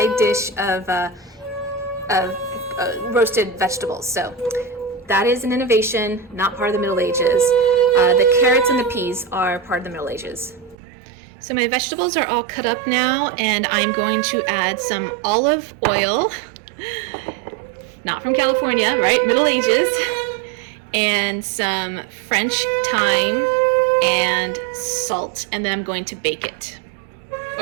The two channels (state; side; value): drops out; left; at 10.8 s